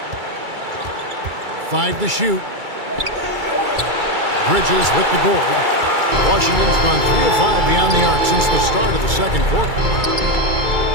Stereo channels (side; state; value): left; late; 2.3 ms